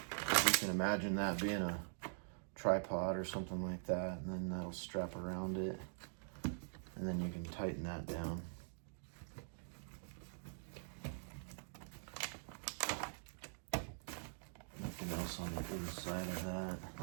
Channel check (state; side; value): silent; left; digital silence